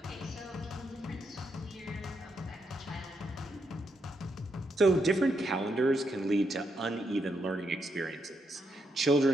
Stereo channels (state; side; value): normal; both; correlation 0.80